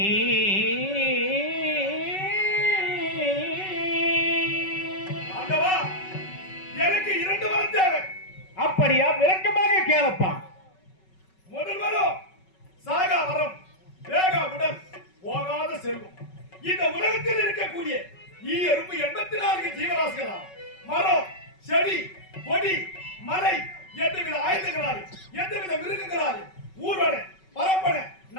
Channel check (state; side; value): late; right; 5.3 ms